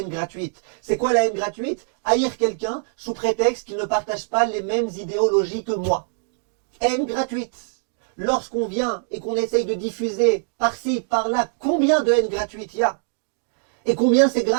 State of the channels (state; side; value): silent; left; digital silence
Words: gratuite. C'est quoi la haine gratuite? Haïr quelqu'un sous prétexte qu'il ne partage pas les mêmes idéologies que moi. Haine gratuite. Lorsqu'on vient et qu'on essaye de diffuser par-ci, par-là, combien de haine gratuite il y a? Et combien c'est